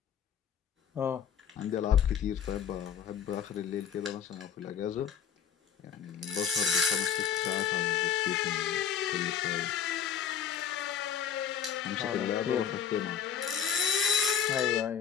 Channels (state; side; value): quieter; right; 7.9 dB